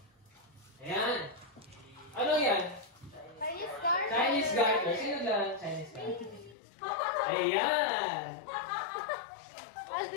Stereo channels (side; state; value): right; drops out; at 6.6 s